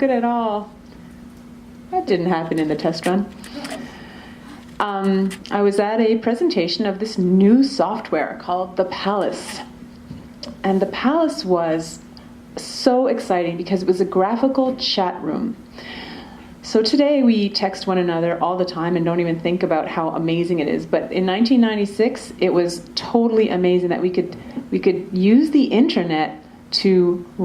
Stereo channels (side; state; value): both; identical; correlation 1.00